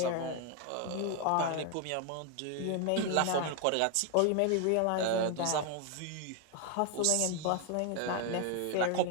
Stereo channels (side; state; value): both; different; correlation 0.00